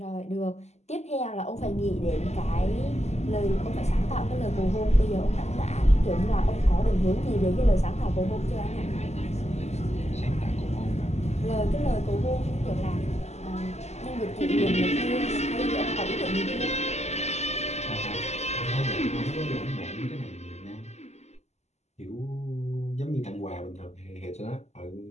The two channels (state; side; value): late; right; 0.32 ms